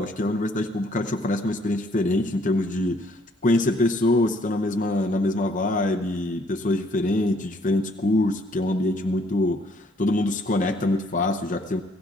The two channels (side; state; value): both; normal; correlation 0.65